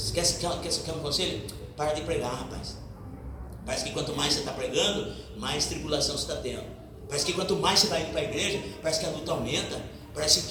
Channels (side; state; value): both; identical; correlation 1.00